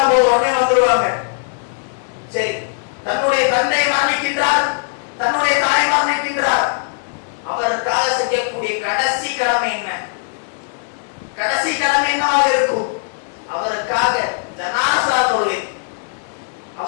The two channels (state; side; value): silent; right; digital silence